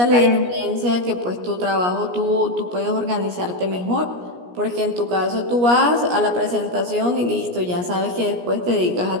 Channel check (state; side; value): late; left; 17 ms